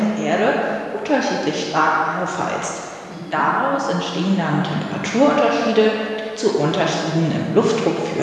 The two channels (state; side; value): identical; both; correlation 1.00